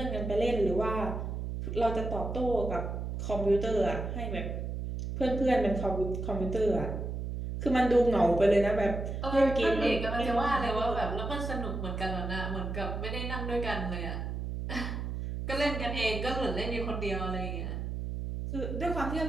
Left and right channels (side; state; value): right; noise; hum, 4 dB below the sound